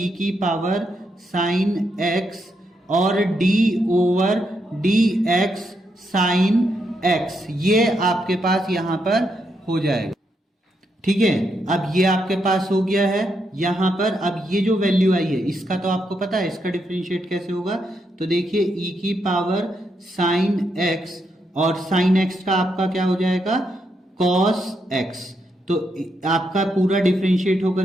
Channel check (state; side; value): normal; both; correlation 0.80